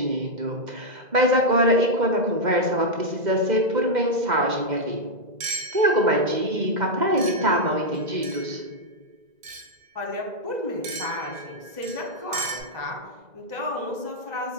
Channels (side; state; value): left; late; 2.0 ms